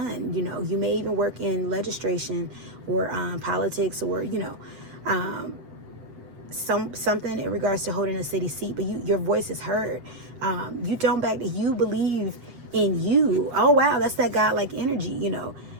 You know, you may even work in legislation or politics or, you know, something in regards to holding a city seat, but your voice is heard. You don't back. You believe in you. Oh wow, that's that God-like energy, you know,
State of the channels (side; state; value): left; late; 8.0 ms